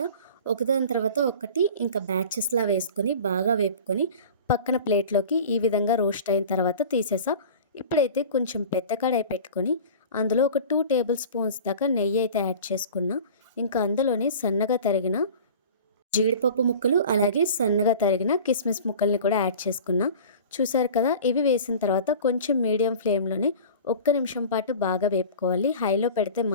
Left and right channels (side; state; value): both; inverted; correlation -0.39